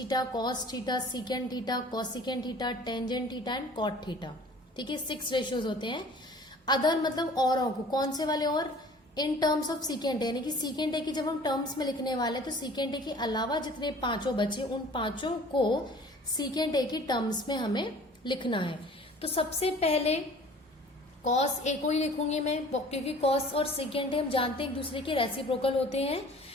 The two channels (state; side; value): normal; both; correlation 0.48